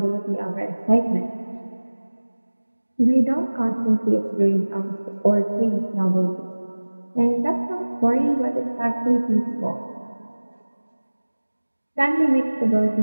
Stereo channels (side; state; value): both; inverted; correlation -1.00